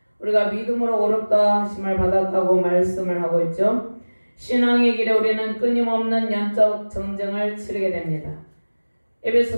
우리가 믿음으로 어렵다 하심을 받았다고 말씀을 하고 있죠. 신앙의 길에 우리는 끊임없는 영적 전쟁을 치르게 됩니다.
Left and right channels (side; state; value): both; inverted; correlation -1.00